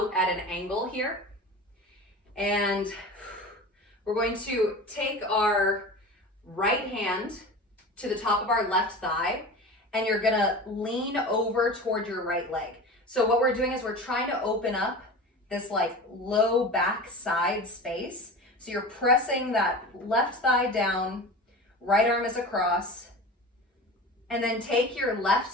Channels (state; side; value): normal; both; correlation 0.33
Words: at an angle here. And we're going to take our right hand to the top of our left thigh, and you're gonna lean over toward your right leg. So what we're doing is we're trying to open up this like low back side space. So you're pressing that left thigh down, right arm is across, and then take your